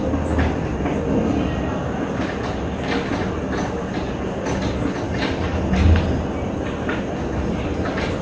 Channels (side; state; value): both; identical; correlation 1.00